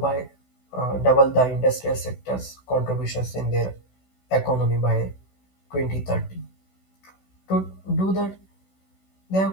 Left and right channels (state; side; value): late; right; 16 ms